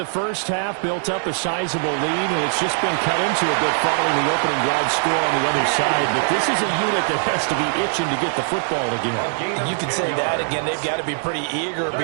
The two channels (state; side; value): silent; left; digital silence